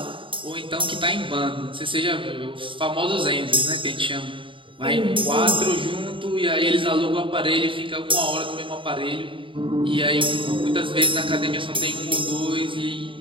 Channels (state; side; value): late; left; 0.25 ms